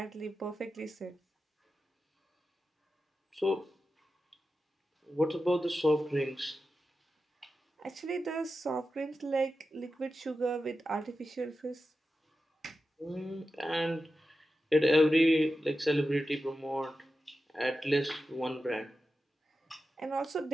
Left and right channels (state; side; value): normal; both; correlation 0.92